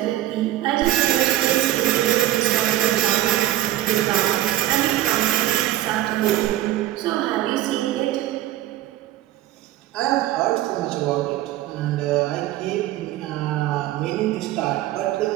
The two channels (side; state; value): left; quieter; 14.1 dB